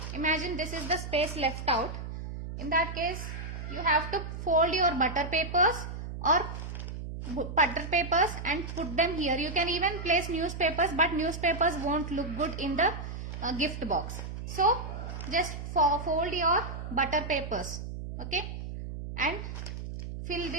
imagine this is the space left out. In that case, you have to fold your butter papers and put them here. You can even place newspapers, but newspapers won't look good in the gift box. So just fold your butter papers, okay, and fill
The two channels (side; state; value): right; noise; hum, 7 dB below the sound